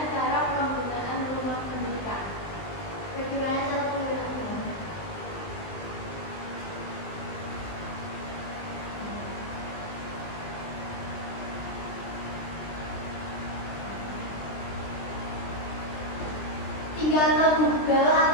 cara penggunaan rumah pendidikan? Bagaimana cara penggunaan? Tinggal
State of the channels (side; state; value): right; late; 20 ms